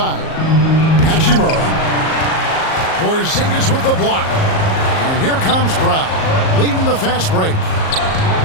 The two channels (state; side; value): late; right; 38 ms